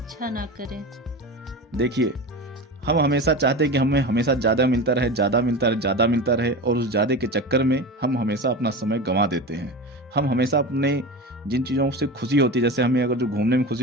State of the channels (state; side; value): normal; both; correlation 0.28